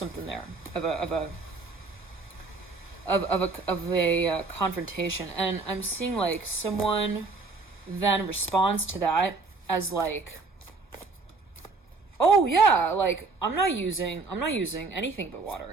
there of a confrontation. And I'm seeing like someone then responds to that as like, oh yeah, like I'm not using anything but water.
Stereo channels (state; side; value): quieter; left; 3.9 dB